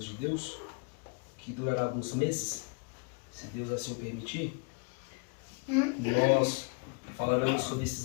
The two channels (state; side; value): quieter; right; 36.2 dB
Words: de Deus, que durará alguns meses, se Deus assim permitir, nós falaremos sobre esses